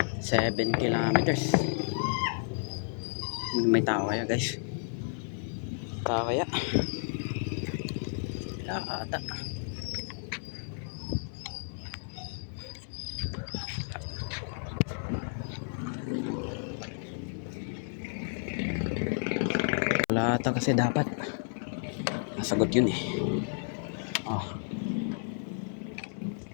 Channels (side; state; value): right; silent; 57 dB below the other